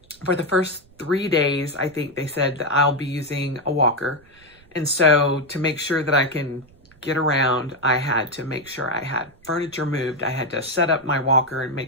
for the first 3 days, I think they said that I'll be using a walker. And so to make sure that I can get around, I had to make sure I had furniture moved. I had to set up my walker and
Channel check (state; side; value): noise; right; rumble, 28 dB below the sound